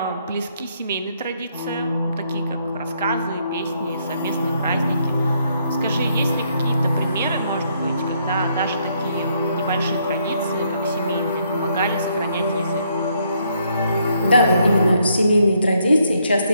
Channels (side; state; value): both; inverted; correlation -0.72